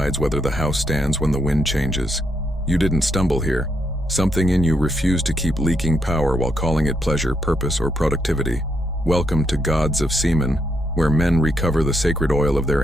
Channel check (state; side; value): normal; both; correlation 0.78